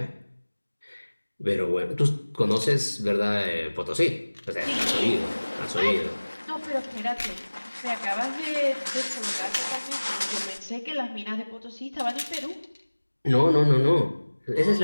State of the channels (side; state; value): both; inverted; correlation -1.00